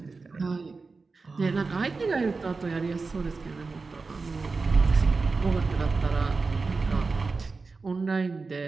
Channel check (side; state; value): left; quieter; 4.2 dB